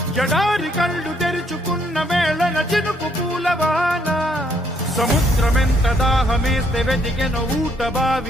జడారి కళ్ళు తెరుచుకున్న వేళన చినుకు పూలవాన సముద్రమెంత దాహమేస్తే వెతికెను ఊట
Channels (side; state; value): both; normal; correlation 0.70